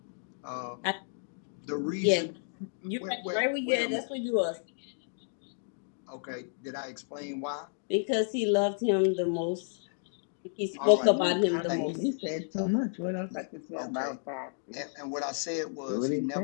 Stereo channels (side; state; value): right; silent; digital silence